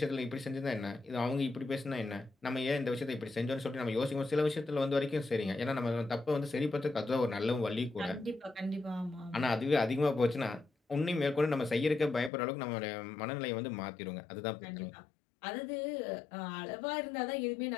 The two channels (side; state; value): right; drops out; at 12.3 s